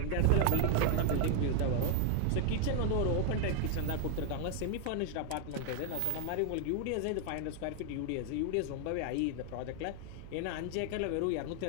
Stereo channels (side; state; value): both; different; correlation 0.00